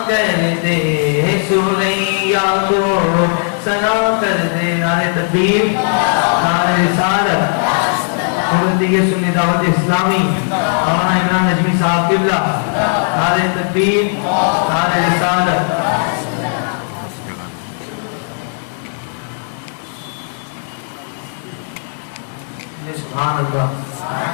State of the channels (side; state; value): right; silent; 65 dB below the other